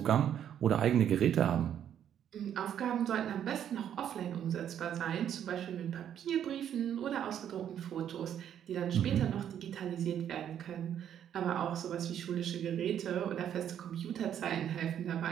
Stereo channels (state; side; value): quieter; left; 9.7 dB